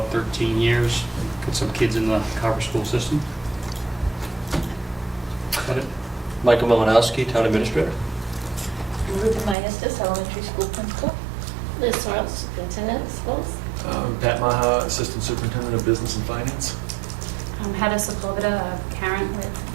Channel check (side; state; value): left; drops out; at 9.6 s